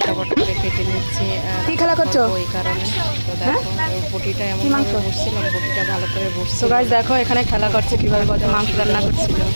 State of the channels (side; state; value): both; inverted; correlation -1.00